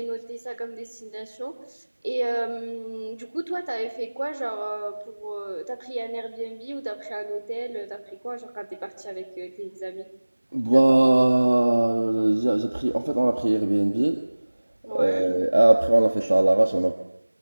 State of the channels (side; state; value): both; inverted; correlation -1.00